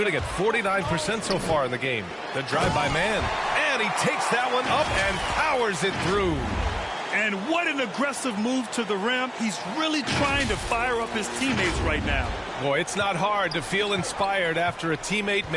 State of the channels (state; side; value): identical; both; correlation 1.00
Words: at 49% so far in the game. The drive by man. And he takes that one up and powers it through. And what an aggressive move to the rim. He's really trying to fire up his teammates right now. Boy, it's not hard to feel inspired after a teammate